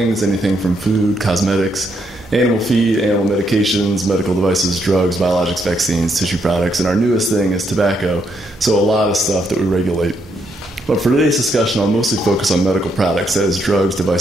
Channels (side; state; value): both; normal; correlation 0.76